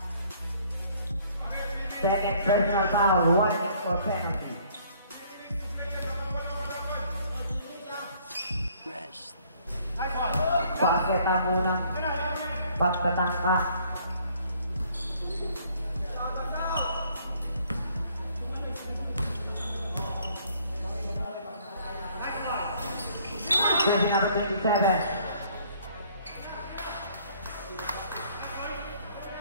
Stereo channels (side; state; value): both; inverted; correlation -0.61